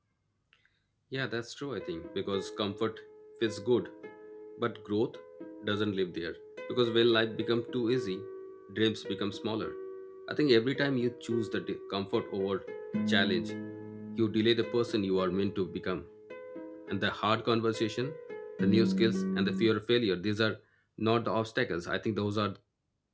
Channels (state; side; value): identical; both; correlation 1.00